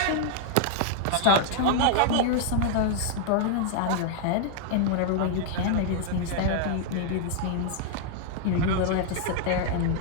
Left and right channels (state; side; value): different; both; correlation -0.01